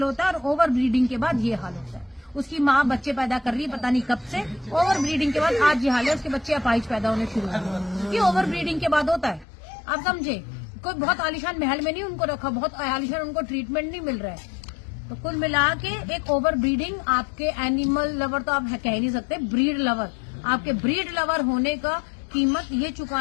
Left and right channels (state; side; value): drops out; right; at 9.5 s